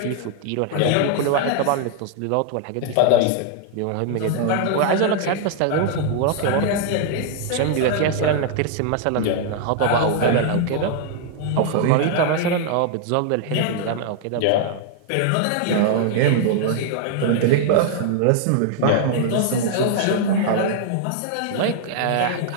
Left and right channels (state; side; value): different; both; correlation 0.00